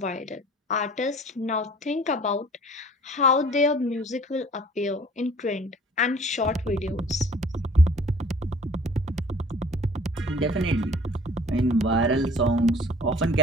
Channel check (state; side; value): normal; both; correlation 0.50